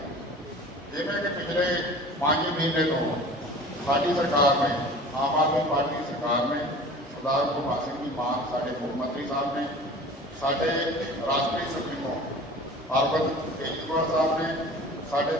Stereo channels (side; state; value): both; normal; correlation 0.41